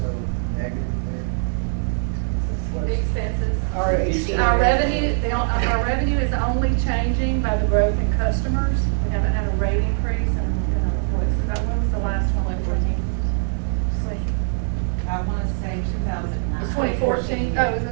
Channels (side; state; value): left; silent; 62 dB below the other